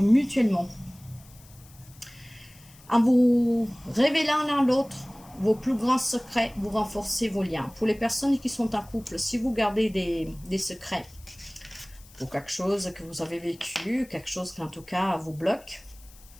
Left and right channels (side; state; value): left; noise; hiss, 24 dB below the sound